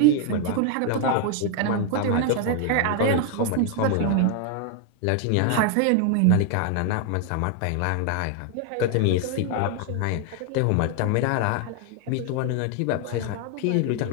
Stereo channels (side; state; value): both; different; correlation 0.00